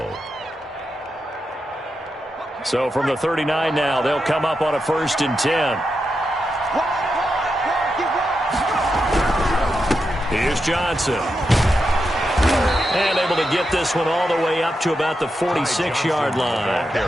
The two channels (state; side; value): normal; both; correlation 0.86